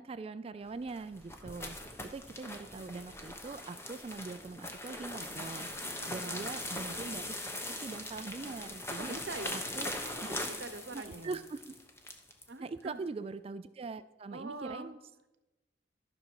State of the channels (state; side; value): normal; both; correlation 0.29